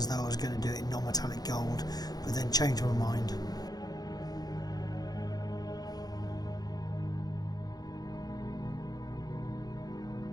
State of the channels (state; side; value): late; right; 0.19 ms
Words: though I was going to do it in non-metallic gold, but then changed my mind.